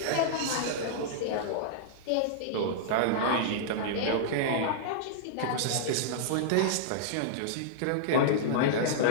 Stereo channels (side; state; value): both; different; correlation -0.02